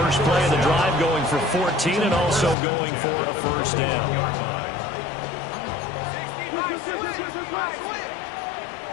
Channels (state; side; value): drops out; right; at 2.6 s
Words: play of the drive going for 14 and also going for a first down.